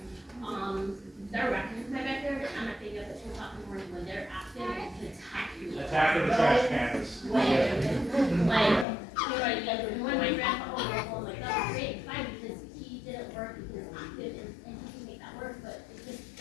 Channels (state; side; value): drops out; right; at 8.8 s